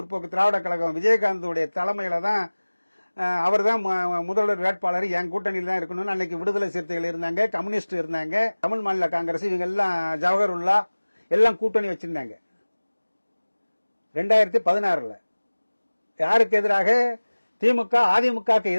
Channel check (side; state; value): both; inverted; correlation -1.00